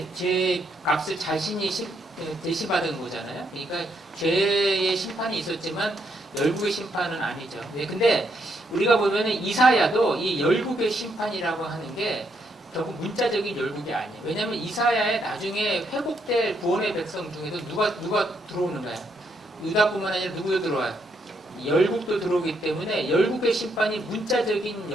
죄 값을 자신이 대신받은 거잖아요. 그러니까 죄의 심판이 있었지만 열국의 심판은 아니죠. 근데 우리가 보면은 이사야도 이 열국의 심판이라고 하는 게 결국 문자적인 열국이 아니에요. 왜냐하면 이사야에 나중에 회복될 구원의 백성 중에도 누가 들어오는 거야? 유다뿐만 아니라 누구도 들어와요? 열국도 들어오기 때문에 열국의 심판이 문자적인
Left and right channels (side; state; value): both; normal; correlation 0.76